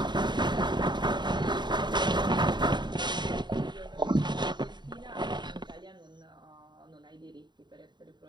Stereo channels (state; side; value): late; left; 0.21 ms